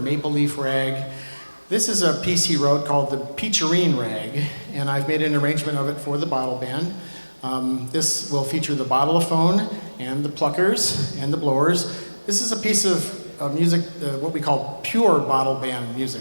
Leaf Rag. This is a piece he wrote called the Peacherine Rag, and I've made an arrangement of it for the bottle band. This will feature the bottleophone and the pluckers and the blowers. This is a piece of music, what we call pure bottle band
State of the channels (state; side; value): inverted; both; correlation -1.00